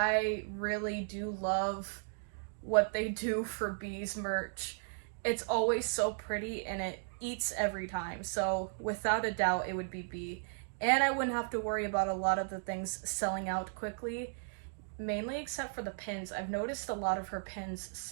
really do love what they do for B's merch. It's always so pretty and it eats every time. So without a doubt, it would be B. And I wouldn't have to worry about a lot of the things selling out quickly, mainly except for the pins. I've noticed a lot of her pins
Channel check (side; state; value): left; silent; digital silence